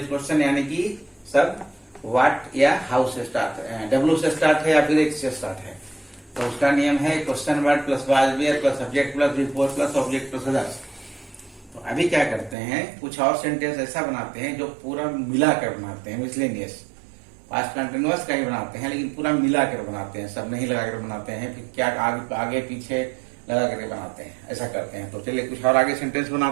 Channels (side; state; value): left; drops out; at 12.6 s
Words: क्वेश्चन यानी कि सब व्हाट या हाउ से स्टार्ट है, W से स्टार्ट है या फिर H से स्टार्ट है। तो उसका नियम है question word plus was where plus subject plus before plus object plus others. तो अभी क्या करते हैं, कुछ और सेंटेंस ऐसा बनाते हैं जो पूरा मिलाकर बनाते हैं, मिसलेनियस। पास्ट कंटिन्यूअस का ही बनाते हैं लेकिन पूरा मिलाकर बनाते हैं, सब नहीं लगाकर बनाते हैं, फिर क्या आगे पीछे लगा करके बनाते हैं, ऐसा करते हैं। तो चलिए कुछ और आगे सेंटेंस